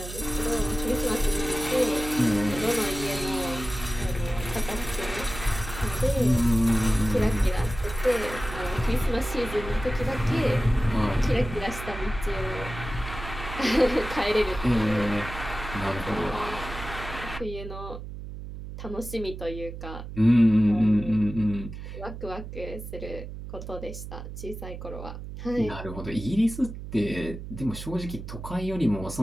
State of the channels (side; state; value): right; noise; hum, 10 dB below the sound